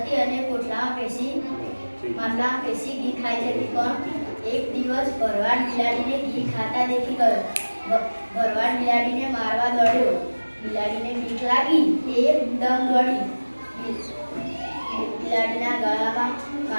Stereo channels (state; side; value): inverted; both; correlation -1.00